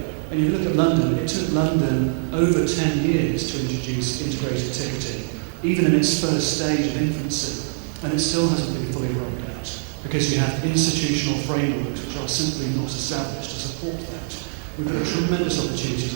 And if you look at London, it took London over 10 years to introduce integrated ticketing, even in its first stage of infancy, and it still hasn't been fully rolled out because you have institutional frameworks which are simply not established to support that. We've got a tremendous opportunity to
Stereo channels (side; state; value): left; silent; digital silence